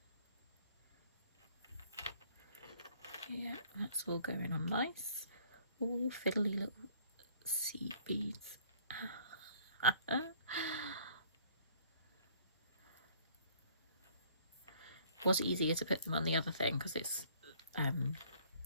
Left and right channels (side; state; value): both; inverted; correlation -0.58